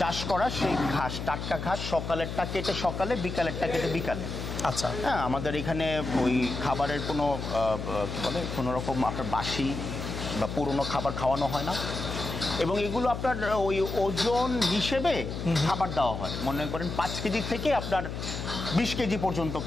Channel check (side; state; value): left; noise; hum, 6 dB below the sound